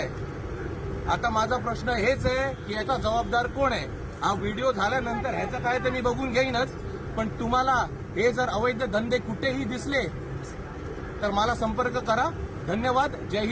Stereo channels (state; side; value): identical; both; correlation 1.00